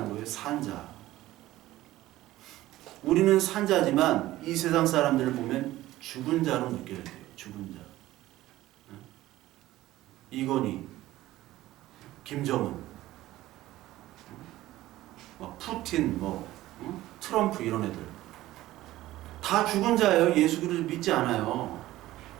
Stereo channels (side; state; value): left; quieter; 15.9 dB